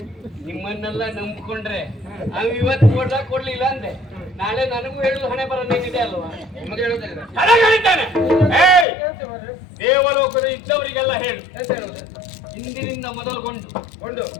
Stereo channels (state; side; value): drops out; right; at 8.8 s